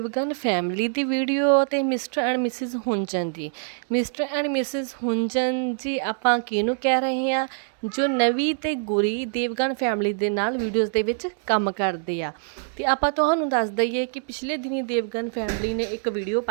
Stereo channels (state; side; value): silent; left; digital silence